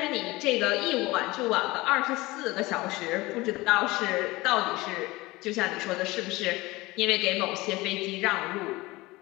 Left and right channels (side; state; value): right; quieter; 20.9 dB